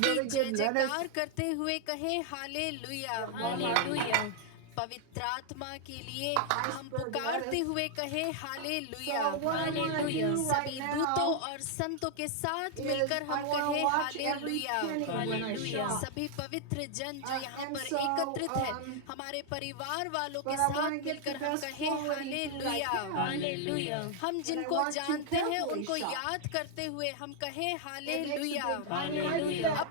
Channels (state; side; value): different; both; correlation 0.00